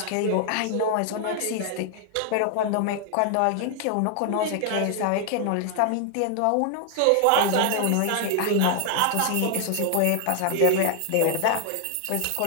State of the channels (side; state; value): both; different; correlation 0.00